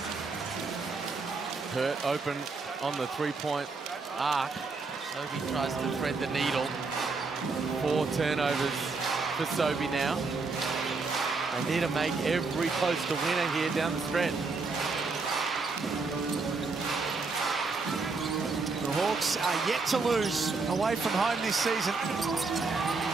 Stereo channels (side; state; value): left; quieter; 4.1 dB